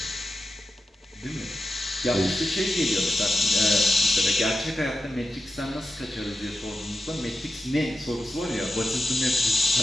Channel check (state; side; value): normal; both; correlation 0.90